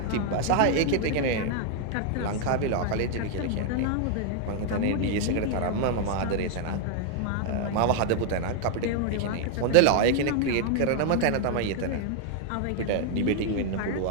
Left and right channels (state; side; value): different; both; correlation 0.00